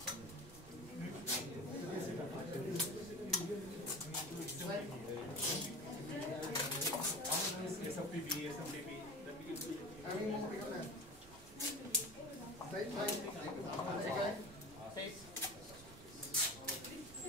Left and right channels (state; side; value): noise; right; rumble, 20 dB below the sound